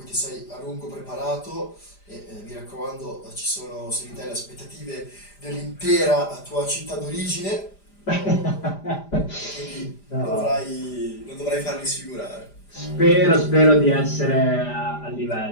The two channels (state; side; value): late; right; 5.0 ms